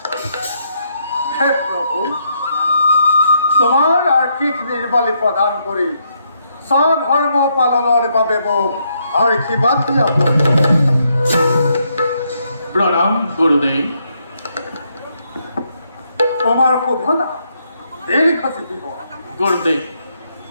হে প্ৰভু, তোমাৰ আৰ্থিক নিৰ্বালী প্ৰদান কৰি স্বধৰ্ম পালনৰ বাবে মোক আশীৰ্বাদ দিয়া। প্ৰণাম গুৰুদেৱ। তোমাৰ শোভনা দীৰ্ঘজীৱী হোৱা। গুৰুদেৱ,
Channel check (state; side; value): inverted; both; correlation -0.76